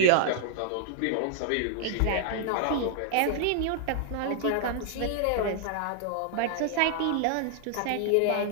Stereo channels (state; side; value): different; both; correlation -0.01